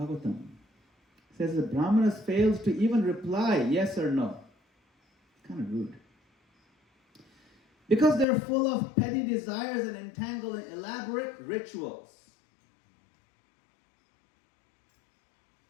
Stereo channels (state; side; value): drops out; right; at 8.2 s